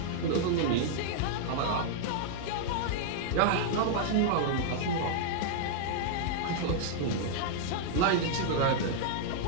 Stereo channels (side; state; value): both; different; correlation -0.01